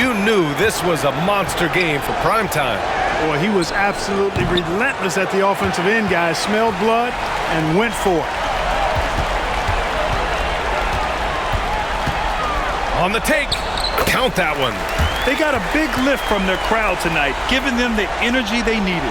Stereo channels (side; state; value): both; identical; correlation 1.00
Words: knew this was a monster game for primetime. Boy, he was absolutely relentless at the offensive end, guys. Smelled blood and went for it. On the take. Count that one. They got a big lift from their crowd tonight, giving them the energy they needed.